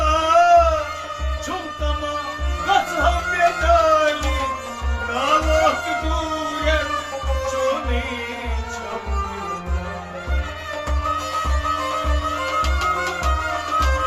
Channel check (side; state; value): both; identical; correlation 1.00